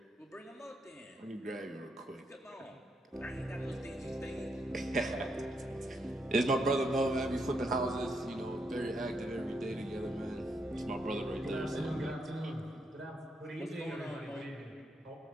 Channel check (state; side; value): normal; both; correlation 0.79